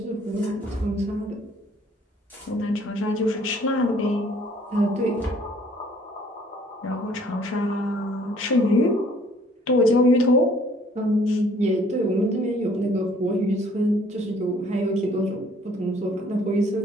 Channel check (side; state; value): both; normal; correlation 0.58